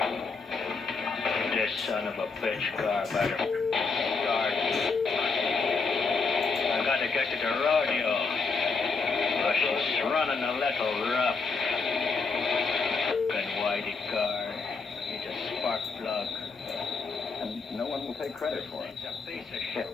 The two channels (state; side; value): quieter; right; 4.5 dB